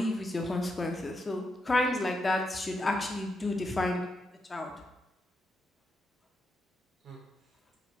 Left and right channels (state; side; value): normal; both; correlation 0.83